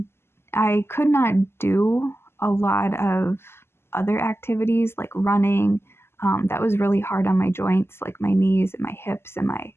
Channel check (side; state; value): right; late; 0.12 ms